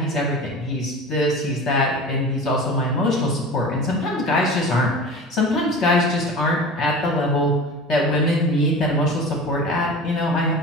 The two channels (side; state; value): both; normal; correlation 0.35